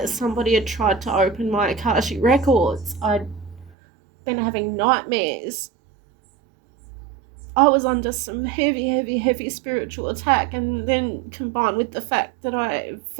somebody had tried to open my Akashic records. I'd been having nightmares. I was under some heavy spiritual attack, and then combined with the fact that I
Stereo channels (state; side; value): drops out; left; at 3.7 s